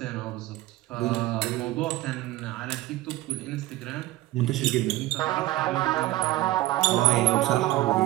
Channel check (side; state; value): left; quieter; 17.0 dB